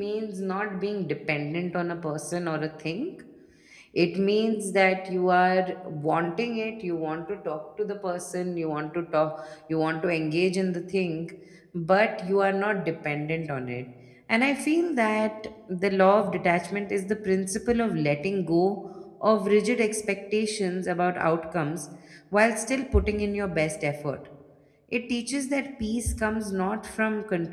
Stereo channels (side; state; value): both; identical; correlation 1.00